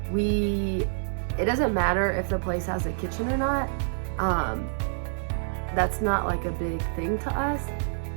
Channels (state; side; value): silent; left; digital silence